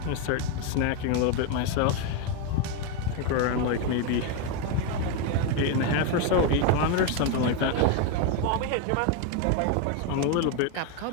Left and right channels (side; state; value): both; different; correlation 0.02